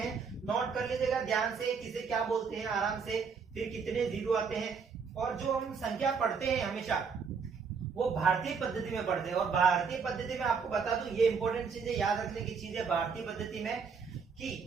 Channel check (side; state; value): left; quieter; 5.7 dB